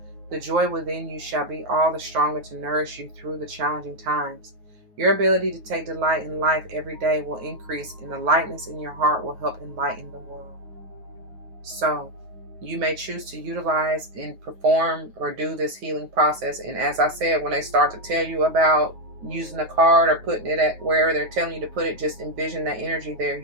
the joy within you shall be all the stronger to nourish you through the challenging times. Your ability to take delight in life every day will increase, and the lightness in your heart will help enlighten the world. So, you may choose to utilize and perform or do this healing process. And as I said, when they start to tell you about using a card or putting it at where they're telling you to put it, just envision that energy there.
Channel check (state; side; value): late; left; 9.4 ms